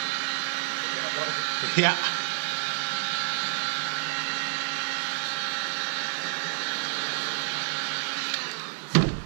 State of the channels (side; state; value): left; silent; 59 dB below the other